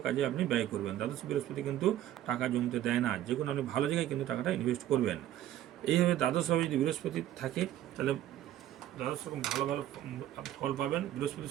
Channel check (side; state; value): left; quieter; 12.5 dB